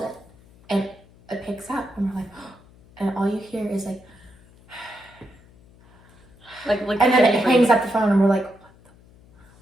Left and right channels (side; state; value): left; noise; hum, 27 dB below the sound